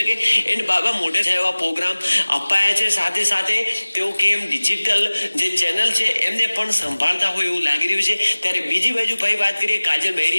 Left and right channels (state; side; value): inverted; both; correlation -1.00